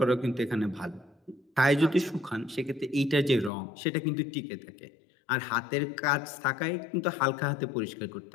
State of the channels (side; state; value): right; drops out; at 3.5 s